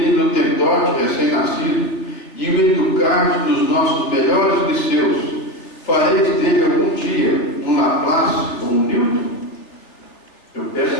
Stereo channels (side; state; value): right; late; 3.4 ms